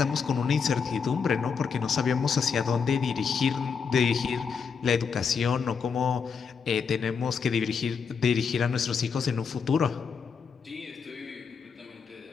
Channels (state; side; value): quieter; right; 6.1 dB